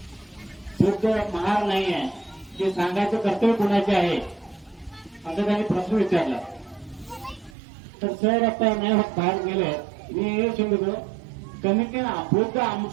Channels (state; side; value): drops out; left; at 7.6 s